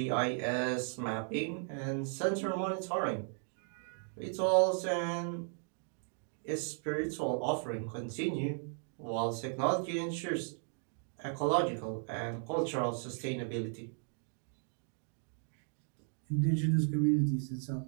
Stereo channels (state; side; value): silent; left; 54 dB below the other